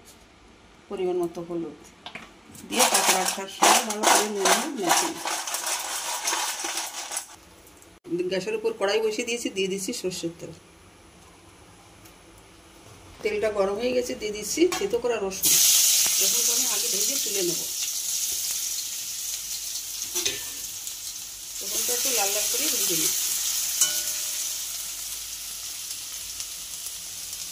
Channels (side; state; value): both; identical; correlation 1.00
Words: পরিমাণ মতো হলুদ দিয়ে কাঁকড়াটার সঙ্গে ভালো করে নুন হলুদ মাখিয়ে নিচ্ছি। গ্যাসের উপর কড়াই বসিয়ে দিয়েছি, দিয়ে দিচ্ছি সর্ষের তেল। তেলটা গরম হয়ে গেছে, দিয়ে দিচ্ছি থেতো করা রসুন। রসুনটা আমি আগে ভেজে তুলে নেব। রসুনটা একটু লাল লাল করে ভেজে নিচ্ছি।